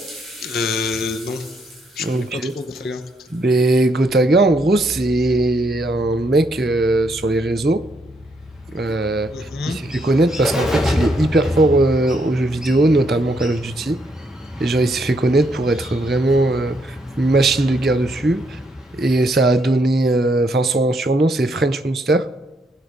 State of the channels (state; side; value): normal; both; correlation 0.74